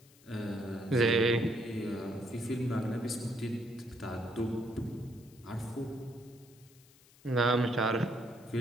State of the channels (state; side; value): noise; left; hiss, 26 dB below the sound